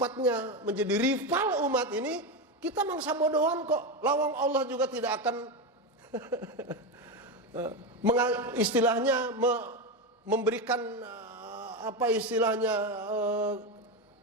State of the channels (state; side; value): normal; both; correlation 0.14